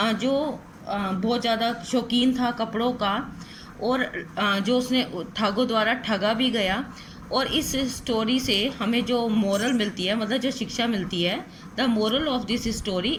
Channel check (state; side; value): identical; both; correlation 1.00